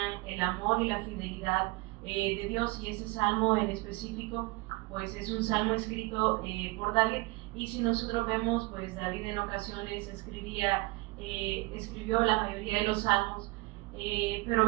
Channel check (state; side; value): quieter; left; 23.2 dB